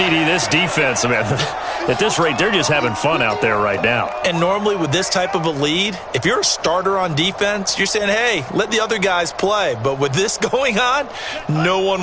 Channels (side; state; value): both; identical; correlation 1.00